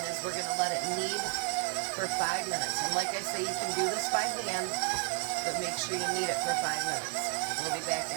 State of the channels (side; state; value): left; quieter; 37.9 dB